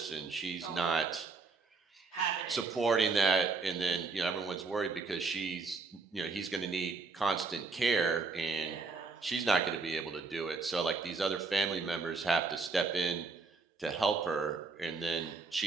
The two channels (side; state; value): left; quieter; 4.2 dB